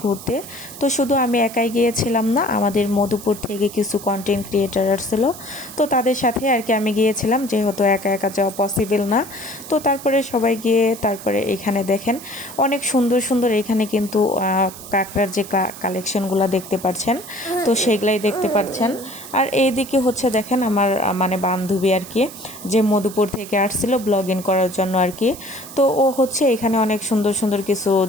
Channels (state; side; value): noise; right; hiss, 15 dB below the sound